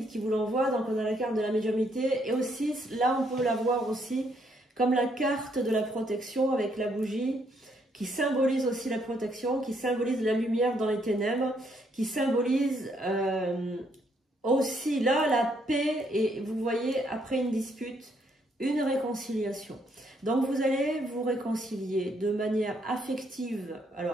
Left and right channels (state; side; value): normal; both; correlation 0.72